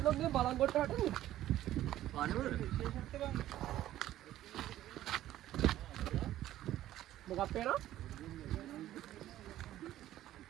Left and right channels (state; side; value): quieter; left; 13.6 dB